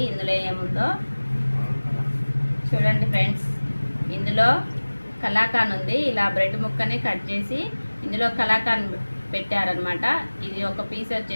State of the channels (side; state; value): both; inverted; correlation -1.00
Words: ఇందులో ఏముందో. చూడండి ఫ్రెండ్స్, ఇందులో కలాకాన్ ఉంది. ఇలా బ్రెడ్ ముక్కని కట్ చేసి ఇందులో కలాకాన్ పెట్టారనమాట. ఇది ఒక పీస్